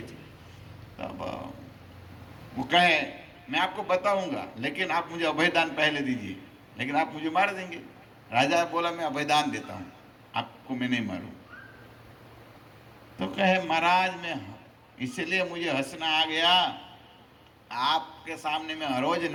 थी? तब वो कहे, मैं आपको बताऊंगा, लेकिन आप मुझे अभयदान पहले दीजिए, लेकिन आप मुझे मार देंगे। राजा बोला, मैं अभयदान देता हूँ, आपको मैं नहीं मारूं। तो कहे, महाराज मैं इसलिए मुझे हंसना आ गया, आपके सामने मैं हर रोज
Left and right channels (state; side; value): identical; both; correlation 1.00